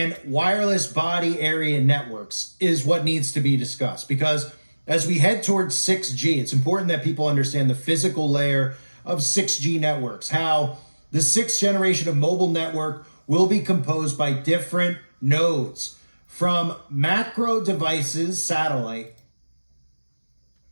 wireless body area networks is what needs to be discussed, because as we head towards 6G, it's important that people understand the physical layer of 6G networks, how the sixth generation of mobile network will be composed by different nodes, from macro devices, satellite.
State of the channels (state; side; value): inverted; both; correlation -1.00